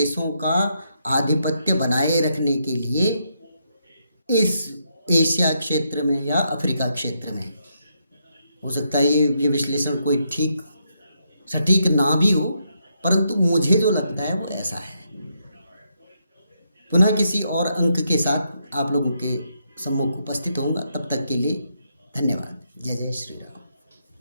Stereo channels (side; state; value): both; inverted; correlation -0.79